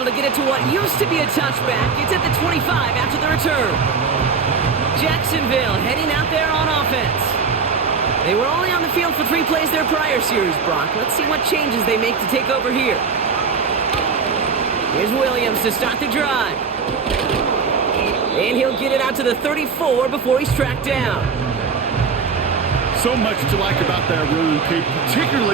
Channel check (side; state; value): left; quieter; 5.4 dB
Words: to get it to what used to be a touchback. It's at the 25 after the return. Jacksonville heading out there on offense. They were only on the field for 3 plays their prior series, Brock. Let's see what changes they make to take over here. Here's Williams to start the drive. And he'll get it out to the 34 before he's tracked down. So much to like about that run, Kate,